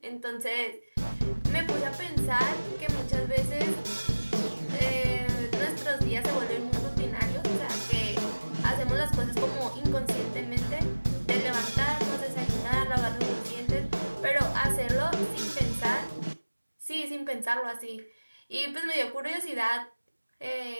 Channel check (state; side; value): inverted; both; correlation -1.00